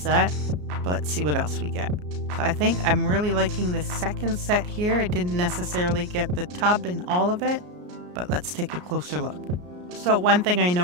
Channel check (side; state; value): left; late; 34 ms